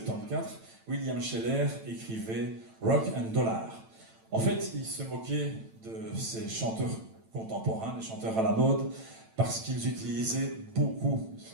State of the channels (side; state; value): left; late; 9.0 ms